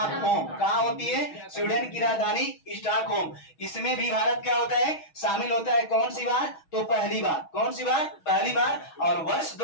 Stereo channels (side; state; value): right; late; 6.3 ms